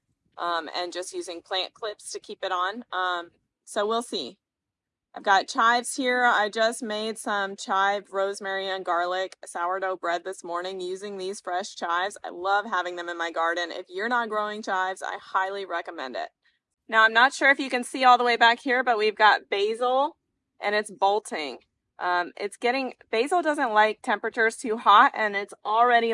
and just using plant clips to keep it on. So we'll see. I've got chives here. I just made some chive, rosemary, and garlic sourdough bread this morning using these fresh chives. I love having them in my garden. If you're not growing chives, I highly recommend it. Now, I'm not sure if you can see all the way back here, but we've got basil and it's bolting. Basil doesn't like temperatures too hot, and it's already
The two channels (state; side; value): identical; both; correlation 1.00